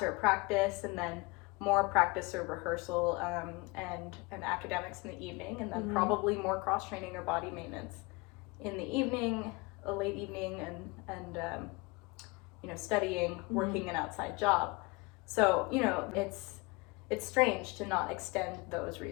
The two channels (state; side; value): quieter; right; 25.9 dB